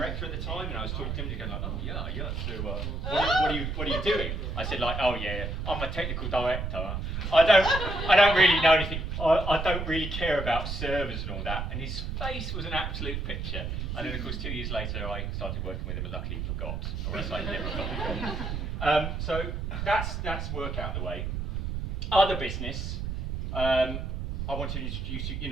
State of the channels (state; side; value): noise; right; rumble, 3 dB below the sound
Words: at the time, and I was talking to him, and going like, oh yeah. So what are you doing? I said like, oh yeah, I'm a technical director. I don't really know anything. I don't really care about servers and all that. And his face was an absolute picture. And then of course 2 years later, I started working with him, and luckily forgot, or else I never got. So that's work out the way. Other business. I want to introduce you. You